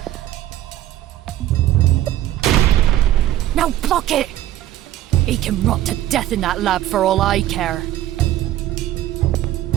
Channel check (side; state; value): left; quieter; 13.3 dB